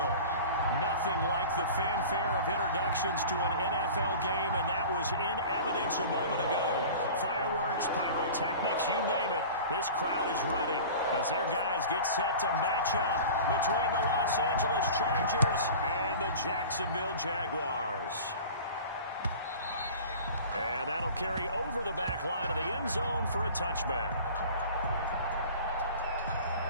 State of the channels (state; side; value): inverted; both; correlation -0.39